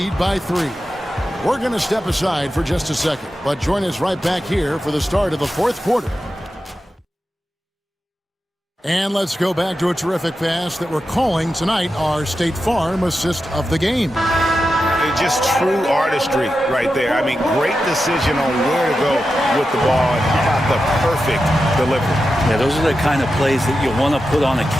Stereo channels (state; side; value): normal; both; correlation 0.90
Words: by 3. We're going to step aside for just a second, but join us right back here for the start of the fourth quarter. And let's go back to a terrific pass that we're calling tonight our State Farm assist of the game. Just true artistry right there. I mean, great decision on where to go with the ball, and how about the perfect delivery. Yeah, those are the kind of plays that you want to put on a